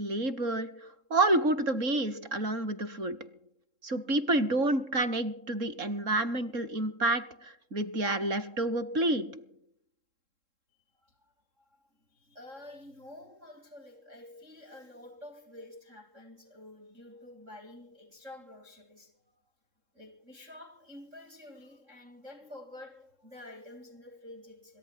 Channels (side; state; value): left; late; 3.7 ms